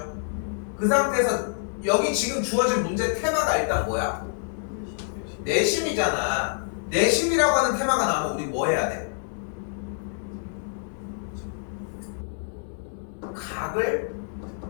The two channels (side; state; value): right; silent; 60 dB below the other